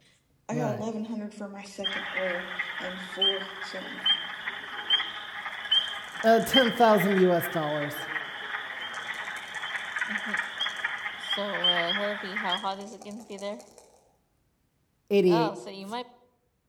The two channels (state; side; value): identical; both; correlation 1.00